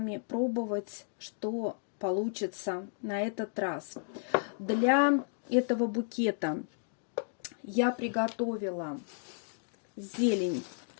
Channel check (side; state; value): right; silent; digital silence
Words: пробовать, что получится на этот раз. Для этого букета я приготовила зелень,